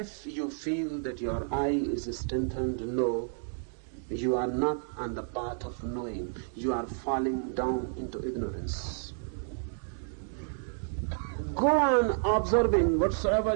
you feel that your eye is strengthened, no, you are not on the path of knowing. You are falling down into ignorance. Go on observing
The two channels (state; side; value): silent; left; 57 dB below the other